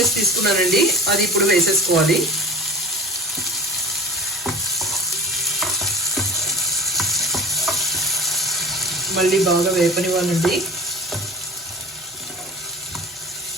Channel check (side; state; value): both; normal; correlation 0.39